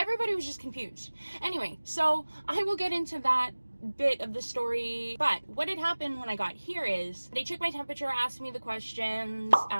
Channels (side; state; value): both; inverted; correlation -1.00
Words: was just confused. Anyway, so I will get into that bit of the story, but what had happened when I got here is they took my temperature, asked me the questions,